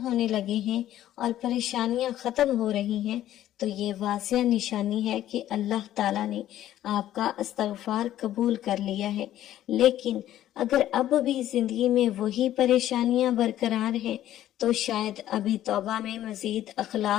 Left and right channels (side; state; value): right; quieter; 12.7 dB